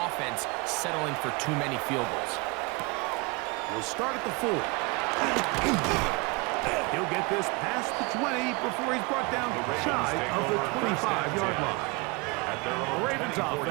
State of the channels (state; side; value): quieter; left; 27.5 dB